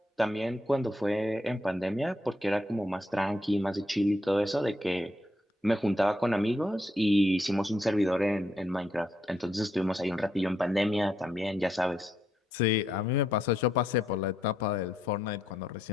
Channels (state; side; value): normal; both; correlation 0.77